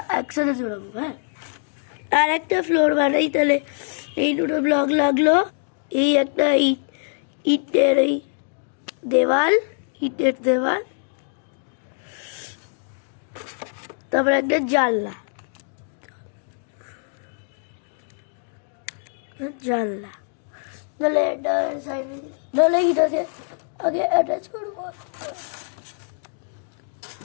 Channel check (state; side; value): silent; right; 63 dB below the other